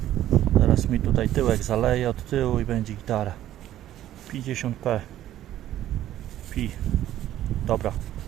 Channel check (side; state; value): left; quieter; 12.7 dB